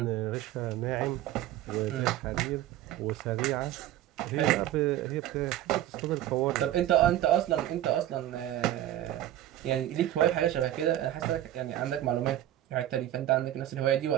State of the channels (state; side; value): quieter; left; 13.1 dB